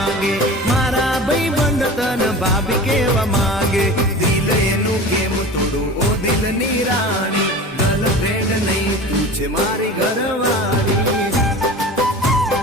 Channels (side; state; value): both; normal; correlation 0.35